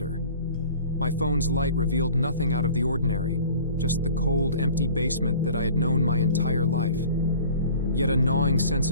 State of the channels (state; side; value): inverted; both; correlation -0.46